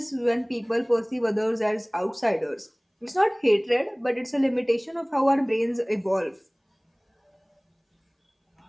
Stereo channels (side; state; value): both; identical; correlation 1.00